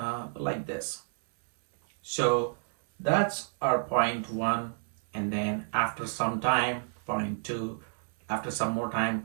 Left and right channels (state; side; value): silent; left; 58 dB below the other